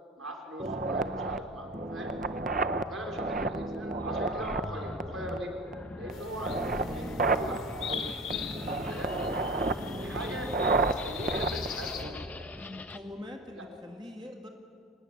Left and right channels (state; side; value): normal; both; correlation 0.31